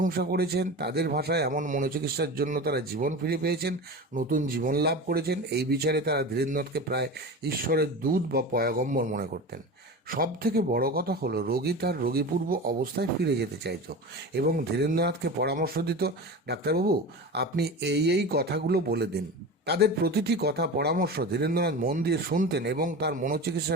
করেছেন। তাদের ভাষায় এমন মনোচিকিৎসার জন্য তারা জীবন ফিরে পেয়েছেন, নতুন জীবন লাভ করেছেন। এই বিচারে তারা ধীরেন্দ্রনাথকে প্রায় ঈশ্বরের দূত বা পয়গম্বর মনে করতেন। সব থেকে বড় কথা হলো রোগী তার রোগীপূর্ব অবস্থায় ফিরে যেতে চাইত এবং ধীরেন্দ্রনাথকে পরামর্শ দিত, ডাক্তারবাবু আপনি এই কথাগুলো বলে দিন। তাদের প্রতিটি কথা পরামর্শ ধীরেন্দ্রনাথ মন দিয়ে শুনতেন এবং তার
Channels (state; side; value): normal; both; correlation 0.29